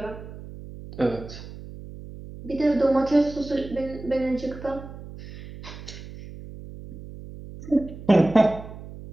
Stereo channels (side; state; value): right; noise; hum, 14 dB below the sound